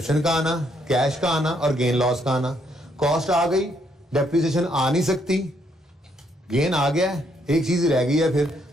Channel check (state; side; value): normal; both; correlation 0.72